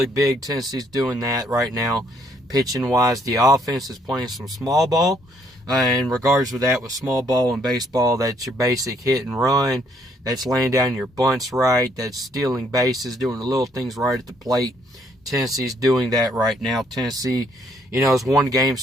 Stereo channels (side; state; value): both; normal; correlation 0.68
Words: big. Tennessee's doing that right now, pitching-wise. The offense is playing some small ball. In regards with that, with small ball and baseball, that's your basic hit and run. That's laying down your bunts right. That's stealing bases, doing the little things right at the plate. Tennessee's doing that right now. Tennessee, has won